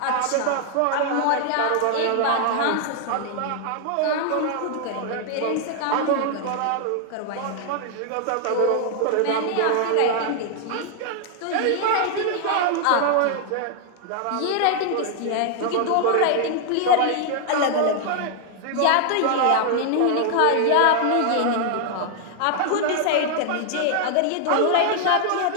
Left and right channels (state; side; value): different; both; correlation 0.00